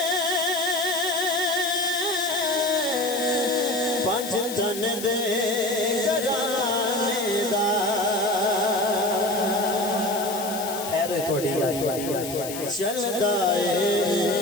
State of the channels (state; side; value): noise; left; hiss, 9 dB below the sound